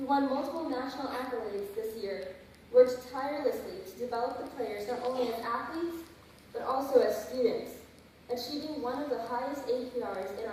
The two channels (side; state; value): both; identical; correlation 1.00